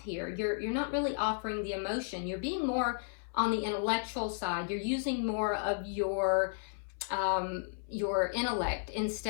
here. You're not really offering the emotion. You're being more on the intellectual side. You're using more of your intellect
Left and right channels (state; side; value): silent; right; 55 dB below the other